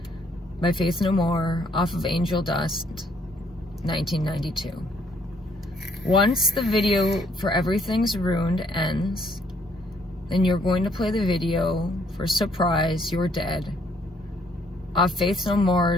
by Faith No More off of Angel Dust 1992. Once the video for Everything's Ruined ends, then you're going to play the video for Surprise You're Dead off Faith No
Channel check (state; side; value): normal; both; correlation 0.67